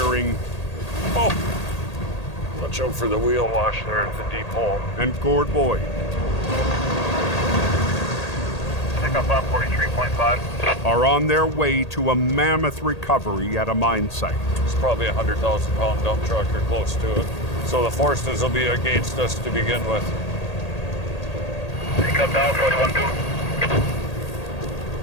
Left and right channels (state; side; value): late; right; 1.8 ms